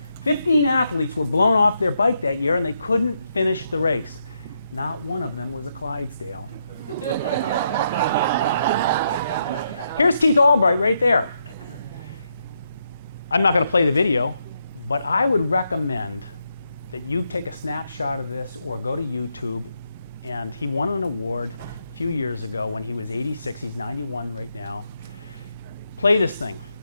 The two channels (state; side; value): inverted; both; correlation -0.80